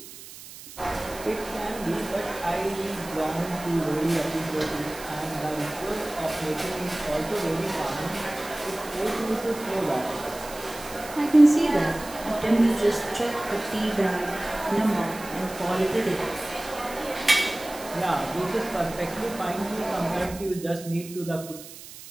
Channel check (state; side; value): noise; right; hiss, 15 dB below the sound